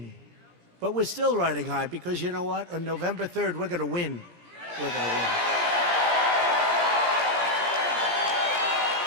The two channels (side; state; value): left; late; 17 ms